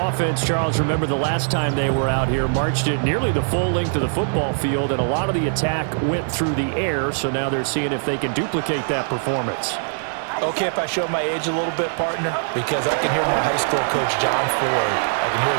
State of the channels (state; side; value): silent; left; digital silence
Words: Charles, remember the last time they were out here, marched it nearly the full length of the football field, and a lot of the attack went through the air, so now they're seeing if they can duplicate that performance. Okay, if I show my age a little bit, partner, because I can hear my high school coach, John Ford. I can hear